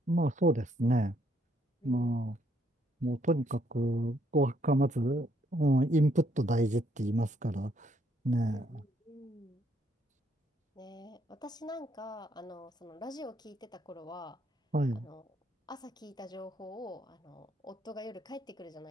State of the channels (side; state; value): both; normal; correlation 0.71